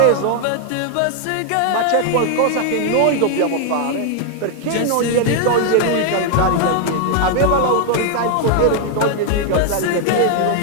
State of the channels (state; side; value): different; both; correlation 0.00